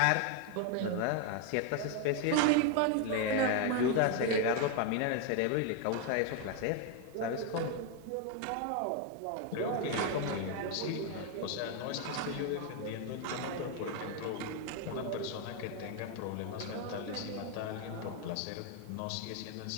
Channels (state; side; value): different; both; correlation 0.01